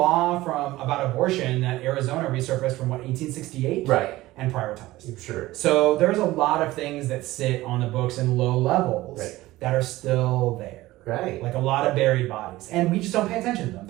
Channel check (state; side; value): quieter; left; 17.7 dB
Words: about abortion that Arizona resurfaced from 1868, Right, and prioritized. sure. So there's a lot of things that sit on the books in low levels that are still there. Right. Like a lot of buried bodies, and we just don't pay attention to them.